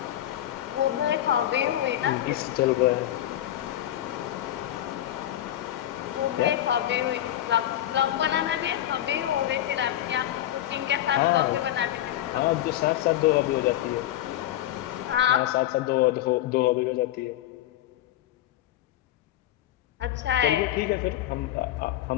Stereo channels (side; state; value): right; quieter; 13.0 dB